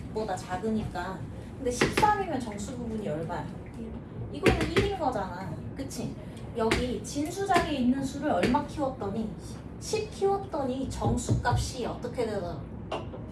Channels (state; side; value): identical; both; correlation 1.00